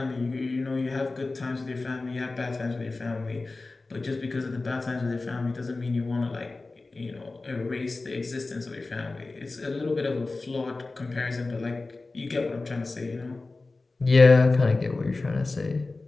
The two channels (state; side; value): quieter; right; 3.5 dB